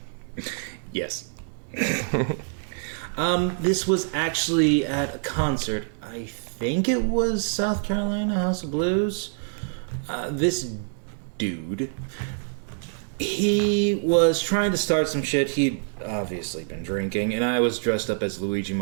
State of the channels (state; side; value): silent; left; digital silence